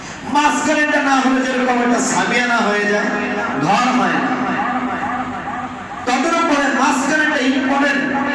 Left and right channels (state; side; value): identical; both; correlation 1.00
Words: মাঝখানেটা না হলে যেরকম একটা সামিয়ানা হয়ে যায়, ঘর হয় না। তাদের উপরে মাঝখানেটা ইম্পর্টেন্ট,